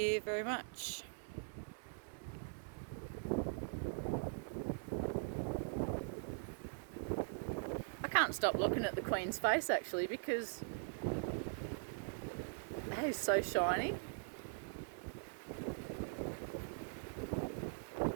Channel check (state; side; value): silent; left; digital silence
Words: very much. I can't stop looking at the Queen's face actually because that is so shiny.